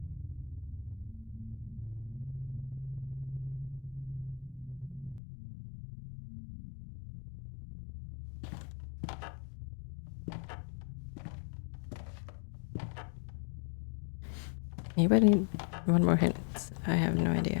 Maybe I need one more hint. I have no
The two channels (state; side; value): drops out; right; at 5.2 s